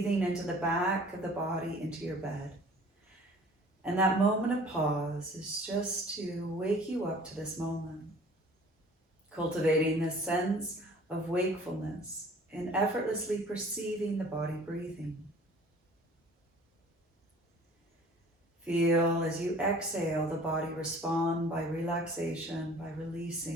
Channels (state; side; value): normal; both; correlation 0.49